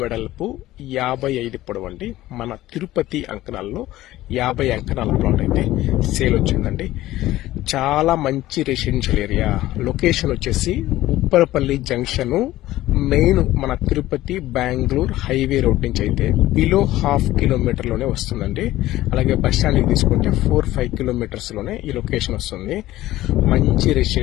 వెడల్పు 55 పొడవు అండి. మన తిరుపతి అంకణాల్లో 50 అంకణాల ప్లాట్ అయితే సేల్ వచ్చిందండి. చాలా మంచి రెసిడెన్షియల్ ఏరియా. లొకేషన్ వచ్చేసి ఉప్పరపల్లి జంక్షన్ మెయిన్ మన తిరుపతి బెంగళూరు హైవే రోడ్ నుంచి అయితే బిలో 1/2 కిలోమీటర్లోనే వస్తుందండి. అలాగే బస్ స్టాండ్కి తీసుకుంటే 4-5 కిలోమీటర్స్ లోనే ఈ లొకేషన్ వస్తుంది. మంచి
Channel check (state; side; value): quieter; right; 15.7 dB